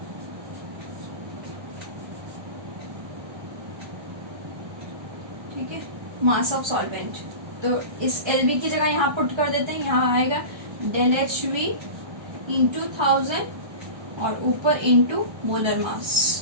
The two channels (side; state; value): left; late; 1.3 ms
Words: ठीक है, मास ऑफ सॉल्वेंट। तो इस LV की जगह यहाँ पुट कर देते हैं। यहाँ आएगा डेल HV इंटू 1000 और ऊपर इंटू मोलर